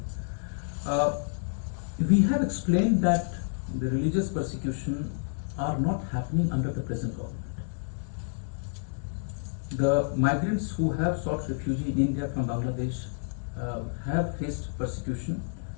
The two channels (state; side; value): silent; right; digital silence